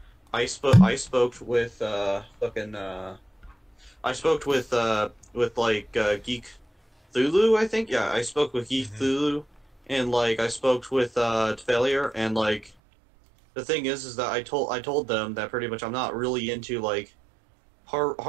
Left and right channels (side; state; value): left; drops out; at 12.7 s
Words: I spoke with Geek Thulu, I think. Yeah, I spoke with Geek Thulu, and I spoke with Failure, and the thing is that I told them that pretty much I'm not really into